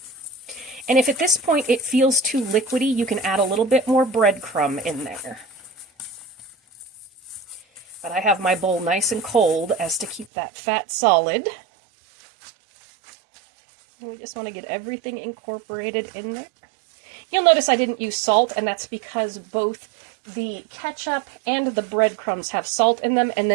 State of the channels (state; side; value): drops out; left; at 10.2 s